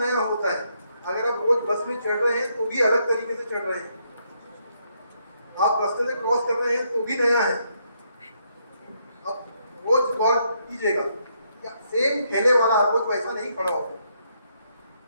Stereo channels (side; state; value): both; inverted; correlation -0.75